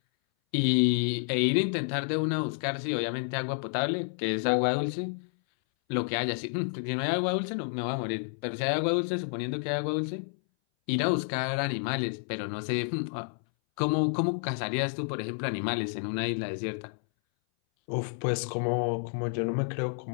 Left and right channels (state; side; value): silent; right; 58 dB below the other